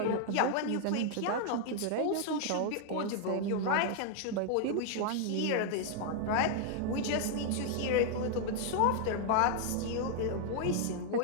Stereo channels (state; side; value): different; both; correlation -0.01